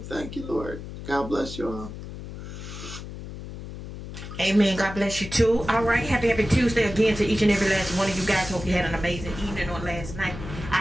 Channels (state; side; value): noise; left; hum, 10 dB below the sound